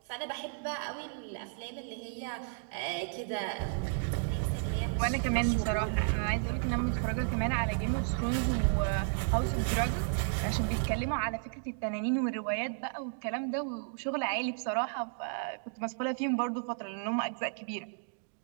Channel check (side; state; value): left; silent; digital silence